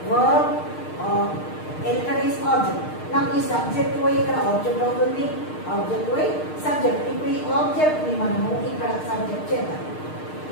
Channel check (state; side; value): late; right; 6.5 ms